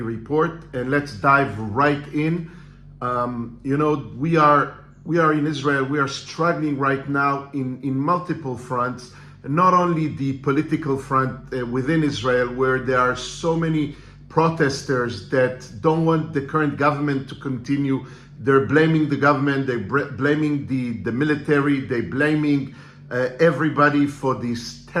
report. And let's dive right in. We are in Israel. We are struggling right now in multiple fronts. Not only the political front within Israel, where there are so many protesters that don't want the current government to continue. They're blaming the government. They're blaming the military. They're blaming everybody for this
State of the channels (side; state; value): both; identical; correlation 1.00